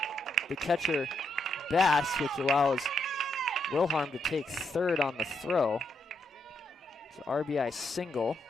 the catcher Bass, which allows Wilharm to take third on the throw. It's an RBI single.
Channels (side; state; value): both; normal; correlation 0.79